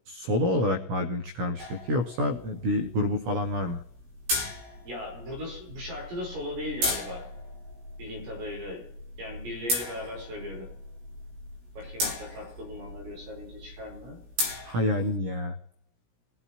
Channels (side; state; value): left; late; 17 ms